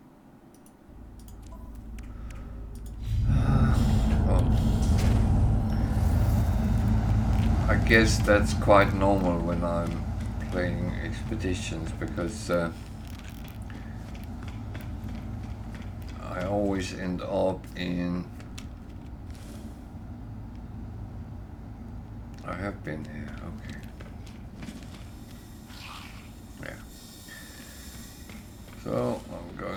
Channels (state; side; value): identical; both; correlation 1.00